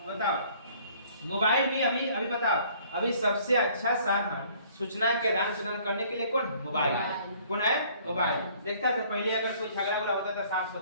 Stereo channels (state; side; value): inverted; both; correlation -0.57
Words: बताओ मोबाइल भी अभी बताओ अभी सबसे अच्छा साधन सूचना के आदान प्रदान करने के लिए कौन है? मोबाइल। कौन है? मोबाइल। देखता था पहले अगर कोई झगड़ा होता था सास